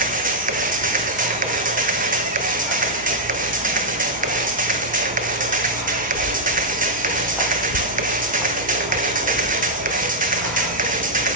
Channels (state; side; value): normal; both; correlation -0.04